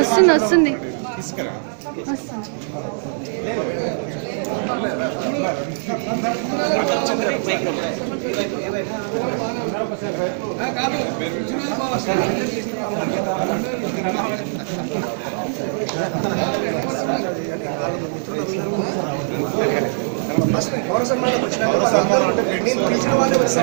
వస్తుంది పౌర సన్మానం వచ్చిన నేను పిలిచిన వాళ్ళే వచ్చి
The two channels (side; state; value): left; silent; digital silence